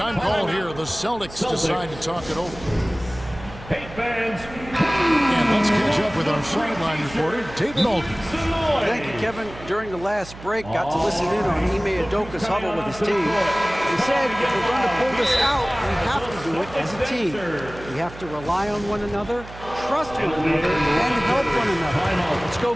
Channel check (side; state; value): right; noise; hum, 16 dB below the sound